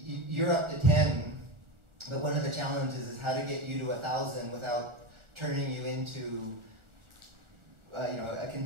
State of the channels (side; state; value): left; late; 1.4 ms